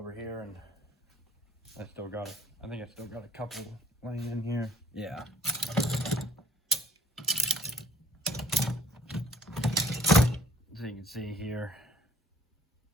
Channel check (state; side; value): normal; both; correlation 0.58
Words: here, and I think I still got a couple laying in here. Yeah. So you can see here.